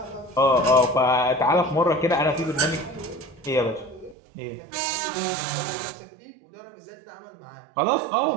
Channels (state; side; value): drops out; left; at 4.2 s